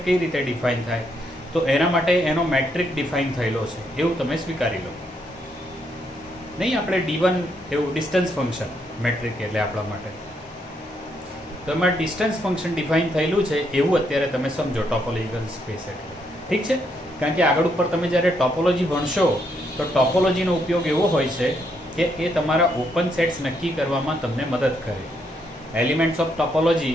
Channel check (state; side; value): normal; both; correlation 0.76